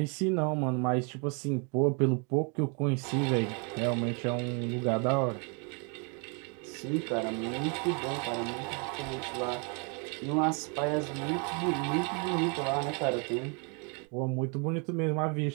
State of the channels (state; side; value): quieter; left; 36.1 dB